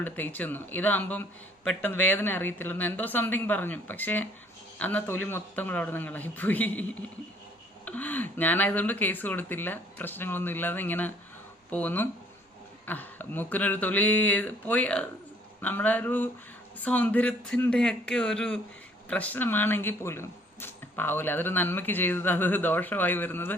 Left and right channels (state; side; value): normal; both; correlation 0.60